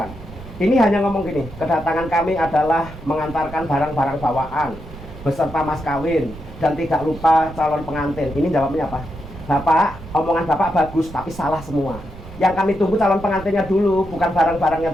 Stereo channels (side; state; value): right; noise; rumble, 14 dB below the sound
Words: Ini hanya ngomong gini, kedatangan kami adalah mengantarkan barang-barang bawaan beserta mas kawin dan tidak lupa calon pengantin. Ini jawabnya apa? Bapak, omongan Bapak bagus tapi salah semua. Yang kami tunggu calon pengantinnya dulu, bukan barang-barangnya